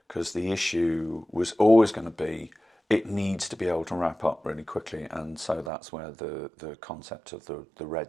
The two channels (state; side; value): drops out; left; at 5.7 s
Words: because the issue was always going to be it needs to be able to wrap up really quickly, and so that's where the concept of the